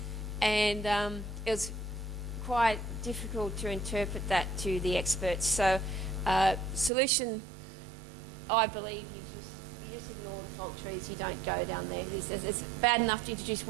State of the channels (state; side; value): drops out; left; at 6.9 s